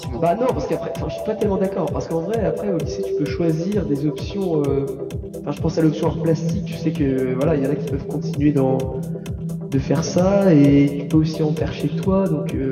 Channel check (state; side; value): identical; both; correlation 1.00